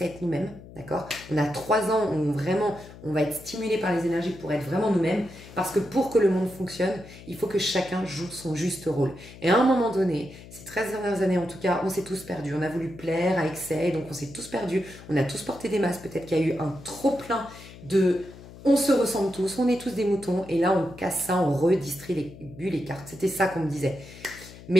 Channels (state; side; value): noise; left; hum, 17 dB below the sound